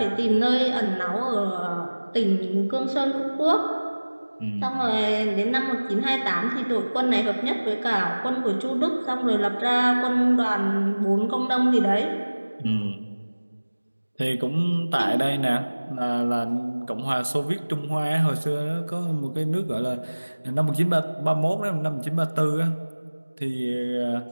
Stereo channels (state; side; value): inverted; both; correlation -1.00